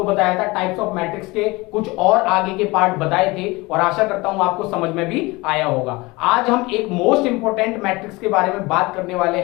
बताया था टाइप्स ऑफ मैट्रिक्स के कुछ और आगे के पार्ट बताए थे और आशा करता हूं आपको समझ में भी आया होगा। आज हम एक मोस्ट इंपोर्टेंट मैट्रिक्स के बारे में बात करने वाले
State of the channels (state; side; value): quieter; right; 23.2 dB